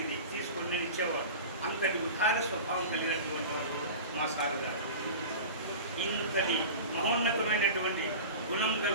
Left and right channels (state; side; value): inverted; both; correlation -0.33